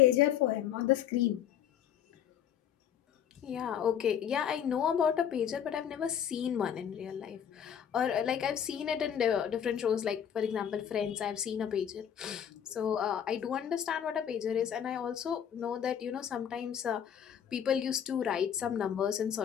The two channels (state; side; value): quieter; right; 9.1 dB